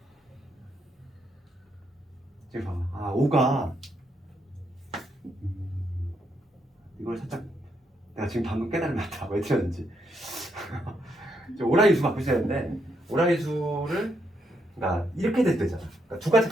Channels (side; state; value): both; normal; correlation 0.77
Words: 지금 봐봐. 5가 이걸 살짝 내가 지금 방금 깨달았다. 왜 틀렸는지. 오라인수 갖고 있어야 되는데 오라인수를 그러니까 이렇게 될 때잖아. 그러니까 두 가지